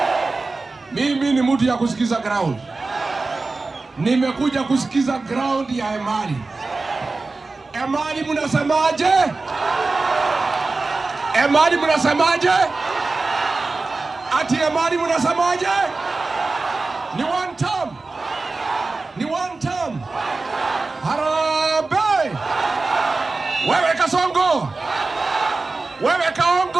Mimi ni mtu ya kusikiza ground. Nimekuja kusikiza ground ya Emali. Emali mnasemaje? Emali mnasemaje? Ati Emali mnasemaje? Ni one term. Ni one term. Harambee! Wewe Kasongo! Wewe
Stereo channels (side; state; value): left; quieter; 3.6 dB